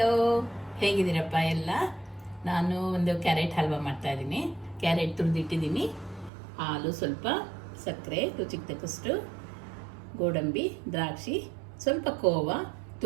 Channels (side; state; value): left; drops out; at 6.3 s